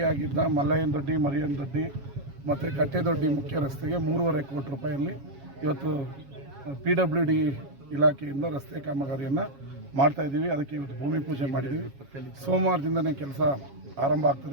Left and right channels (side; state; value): left; late; 7.3 ms